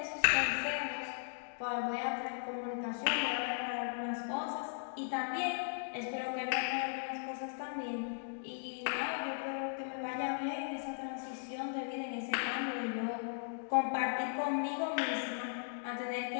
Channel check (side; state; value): right; silent; digital silence